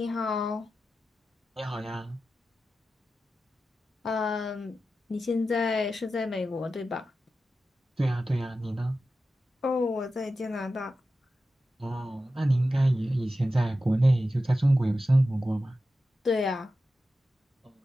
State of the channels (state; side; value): normal; both; correlation 0.92